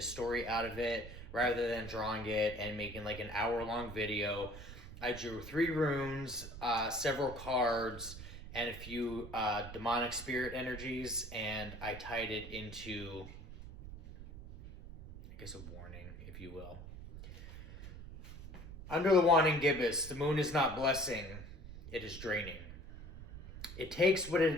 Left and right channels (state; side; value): noise; right; rumble, 13 dB below the sound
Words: story out of it rather than drawing it and making like an hour-long video. I drew 3 runes, several cards, and a few demonic spirit energies, and I tied it into, I guess, a warning, if you will. Under the Waning Gibbous, the moon is not blessing, it is draining. It takes what